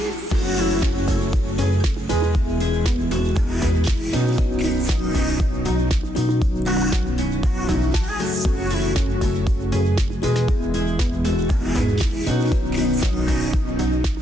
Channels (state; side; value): normal; both; correlation 0.78